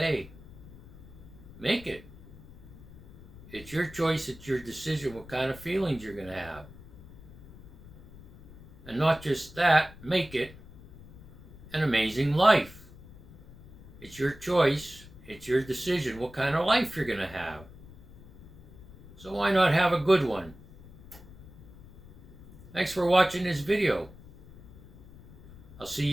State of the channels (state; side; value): noise; left; rumble, 20 dB below the sound